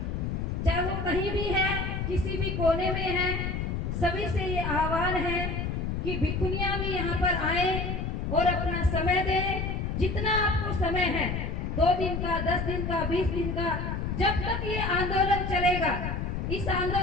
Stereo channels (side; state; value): left; noise; rumble, 2 dB below the sound